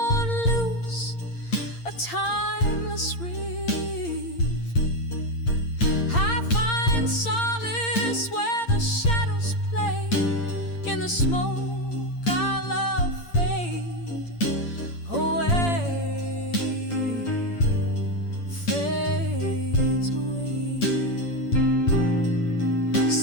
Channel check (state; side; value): late; right; 8.7 ms